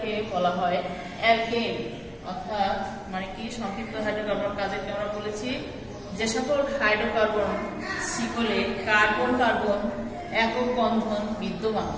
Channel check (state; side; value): identical; both; correlation 1.00